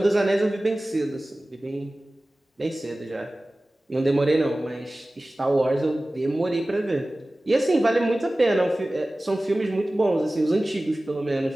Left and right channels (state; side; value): normal; both; correlation 0.97